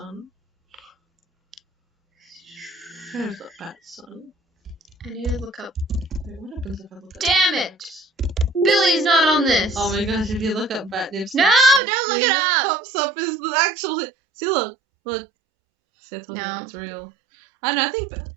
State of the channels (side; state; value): left; drops out; at 11.8 s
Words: Where's the Batson? I need to look up. Wait, what happens if I look up? Damn it! Billy's not on this. Oh my gosh, if you look up bat nips. No, don't look it up! What pops up is the actual. See, look. See, No. It's real. I don't know, I think.